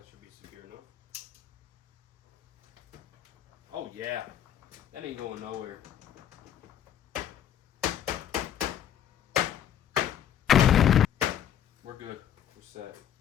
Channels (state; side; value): quieter; right; 10.0 dB